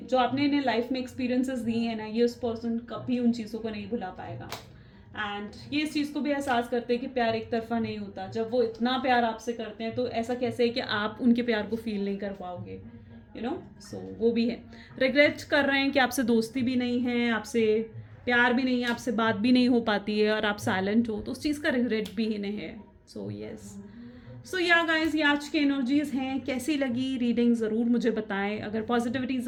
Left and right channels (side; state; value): both; identical; correlation 1.00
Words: जो आपने इन्हें लाइफ में एक्सपीरियंसेस दिए हैं ना, ये उस पर्सन कभी उन चीज़ों को नहीं भुला पाएगा। एंड ये इस चीज़ को भी एहसास करते हैं कि प्यार एक तरफा नहीं होता। जब वो इतना प्यार आपसे करते हैं तो ऐसा कैसे है कि आप उनके प्यार को फील नहीं कर पाओगे, सो वो भी है। रिग्रेट कर रहे हैं कि आपसे दोस्ती भी नहीं है, आपसे प्यार भी नहीं है, आपसे बात भी नहीं हो पाती है, और आप साइलेंट हो, तो उस चीज़ का रिग्रेट भी इन्हें है। सो यस, सो या गाइस, ये आज की एनर्जीज हैं। कैसी लगी रीडिंग ज़रूर मुझे बताएं। अगर पॉजिटिविटी